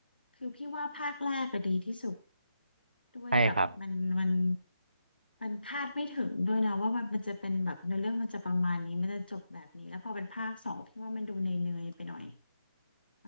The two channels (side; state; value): both; inverted; correlation -0.87